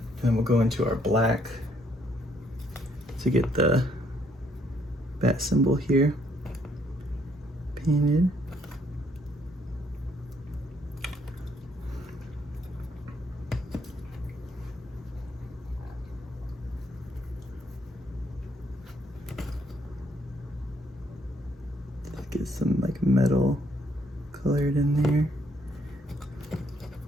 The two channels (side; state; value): both; normal; correlation 0.69